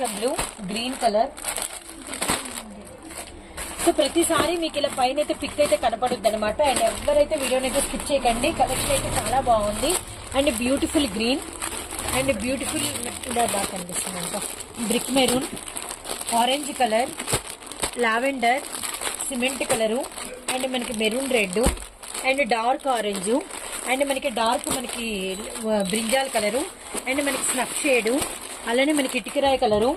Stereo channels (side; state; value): both; identical; correlation 1.00